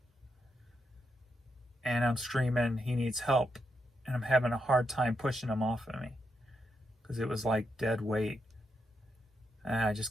And I'm screaming, he needs help. And I'm having a hard time pushing him off of me, because it was like dead weight. And I just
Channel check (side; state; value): both; normal; correlation 0.82